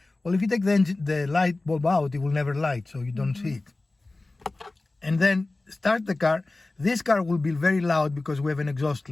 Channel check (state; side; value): quieter; right; 3.1 dB